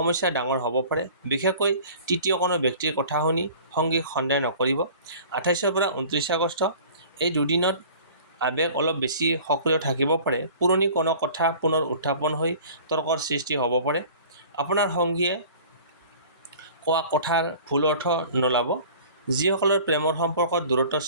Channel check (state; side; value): inverted; both; correlation -0.45